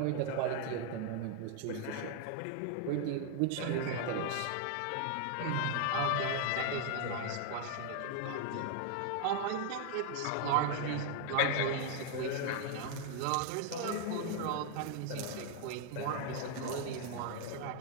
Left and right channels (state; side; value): different; both; correlation 0.00